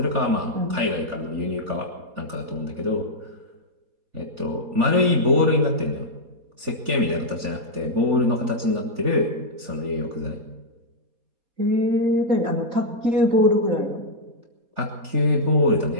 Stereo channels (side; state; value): left; late; 4.2 ms